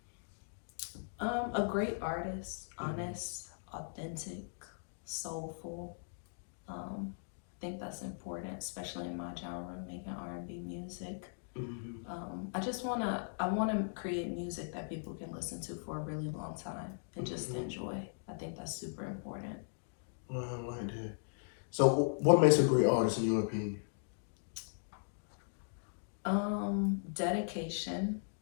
A great artist, honest, authentic, soulful. I think that's important, especially in my genre, making R&B music. I wanna create music that people can listen to for a really long time and just enjoy. I think that's super important. Well, I like that. So what makes a great artist in your opinion? Dedication,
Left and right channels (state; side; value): silent; right; digital silence